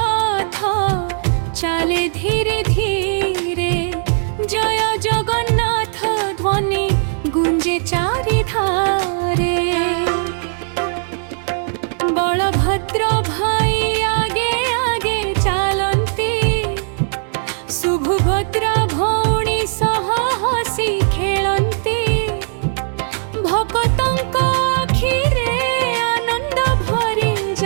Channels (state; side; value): silent; left; digital silence